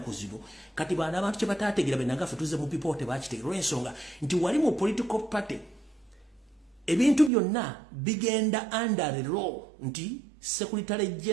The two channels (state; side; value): drops out; left; at 7.3 s